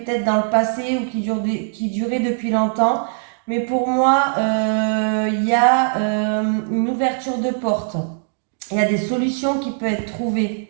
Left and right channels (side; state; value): left; silent; digital silence